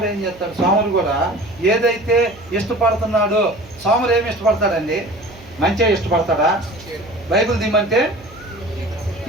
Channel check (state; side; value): noise; right; hum, 22 dB below the sound